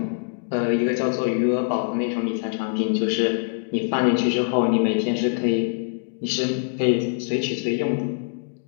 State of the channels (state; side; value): silent; right; digital silence